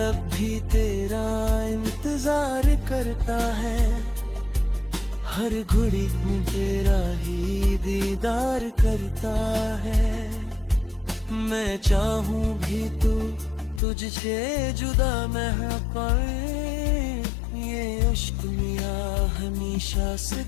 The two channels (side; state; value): right; drops out; at 13.8 s